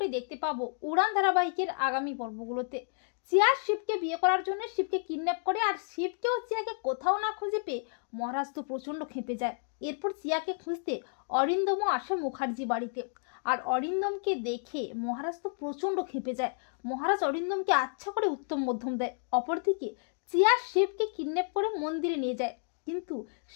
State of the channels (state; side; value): silent; right; 57 dB below the other